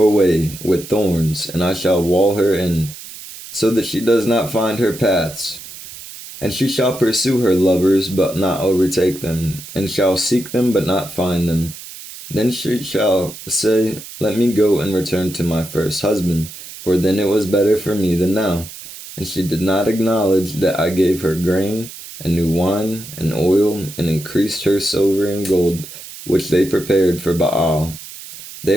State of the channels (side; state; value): right; noise; hiss, 14 dB below the sound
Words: way with thorns, and I shall wall her in, so that she does not find her paths. And she shall pursue her lovers, but not overtake them, and shall seek them, but not find them. Then she shall say, Let me go and return to my first husband, for then it was better for me than now. And she did not acknowledge that I gave her grain, and new wine, and oil, and increased her silver and gold, which they prepared for Baal.